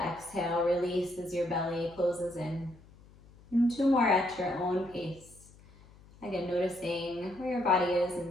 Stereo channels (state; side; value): noise; left; hum, 24 dB below the sound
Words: exhale release as your belly closes in. And two more at your own pace. Again, noticing where your body is